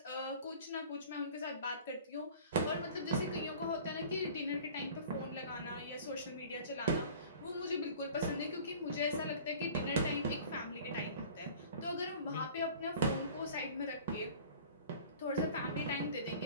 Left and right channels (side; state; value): both; inverted; correlation -0.45